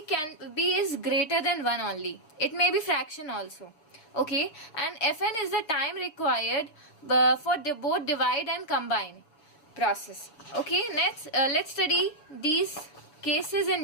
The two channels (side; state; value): right; late; 6.5 ms